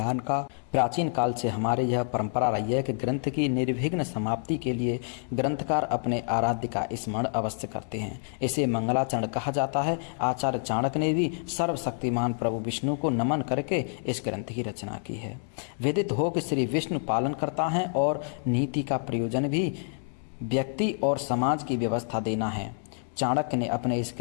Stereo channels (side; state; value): right; silent; 59 dB below the other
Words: का प्राचीन काल से हमारे यह परंपरा रही है कि ग्रंथ की निर्विघ्न समाप्ति के लिए ग्रंथकार अपने आराध्य का स्मरण अवश्य करते हैं। इसे मंगलाचरण कहा जाता है। आचार्य चाणक्य ने भी सर्वशक्तिमान प्रभु विष्णु को नमन करके इस ग्रंथ की रचना की है। विदित हो कि श्री विष्णु पालन करता है और नीति का प्रयोजन भी व्यक्ति और समाज की व्यवस्था देना है। चाणक्य ने अपने इस